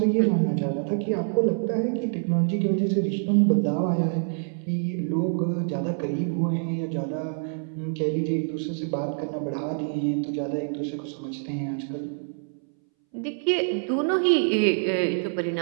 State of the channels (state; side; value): silent; left; 61 dB below the other